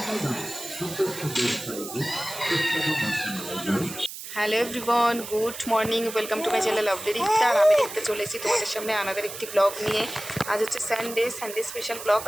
everyone, good morning, welcome to my channel of Rikta. আর আমি দেখতে চলে এসেছি তোমাদের সামনে আনাদের একটি ব্লগ নিয়ে। আজ হচ্ছে সানডে স্পেশাল ব্লগ।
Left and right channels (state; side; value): noise; right; hiss, 10 dB below the sound